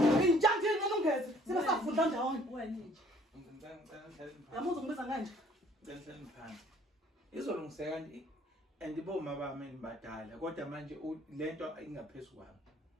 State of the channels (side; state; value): both; normal; correlation 0.58